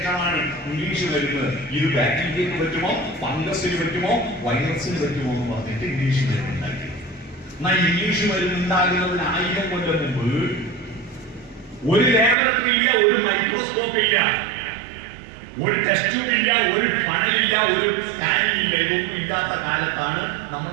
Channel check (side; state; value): left; drops out; at 12.4 s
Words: ഇംഗ്ലീഷ് മരുന്ന്. ഇത് ബാക്ടീരിയക്ക് പറ്റുമോ, ഫംഗസിന് പറ്റുമോ, വൈറസിന് പറ്റുമോ എന്ന് പറഞ്ഞിട്ട് ഇംഗ്ലീഷ് മരുന്ന് ഉണ്ടാക്കി. എന്നാൽ ഇംഗ്ലീഷ് മരുന്ന് ഉണ്ടാകുന്നതിന് 1000 കൊല്ലം മുമ്പ് ഒരു ലാബറട്ടറി ഇല്ല, ഒരു മൈക്രോസ്കോപ്പ് ഇല്ല, ഒരു ടെസ്റ്റ് ട്യൂബ് ഇല്ല, ഒരു ഫണലില്ല, ഒരു സ്കാനിങ് ഇല്ല. ഇതൊന്നും ഇല്ലാത്ത കാലത്താണ്